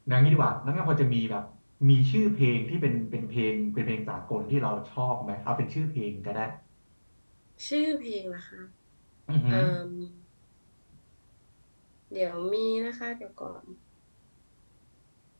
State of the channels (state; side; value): inverted; both; correlation -1.00